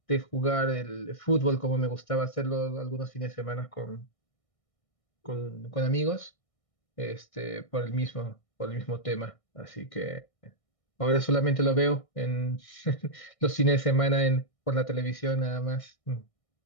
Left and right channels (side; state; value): right; late; 1.6 ms